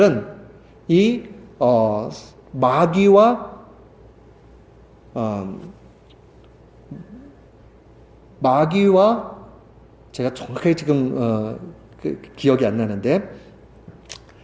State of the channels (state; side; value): identical; both; correlation 1.00